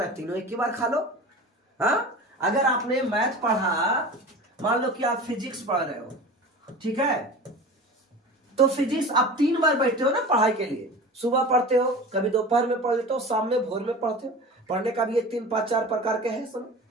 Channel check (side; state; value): both; normal; correlation 0.35